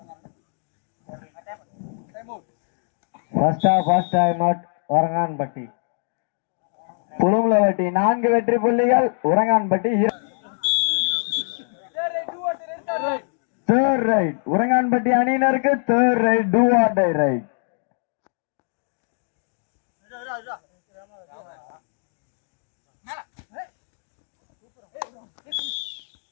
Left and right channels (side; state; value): right; silent; digital silence